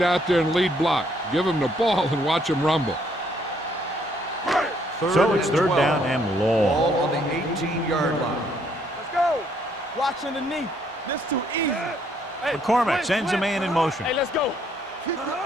out there and lead block. Give him the ball and watch him rumble. So it's third down and long. Ball on the 18-yard line. Let's go. Watch underneath. This too easy. Hey, McCormick sends a man in motion. Hey, let's go. Keep your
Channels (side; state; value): both; normal; correlation 0.68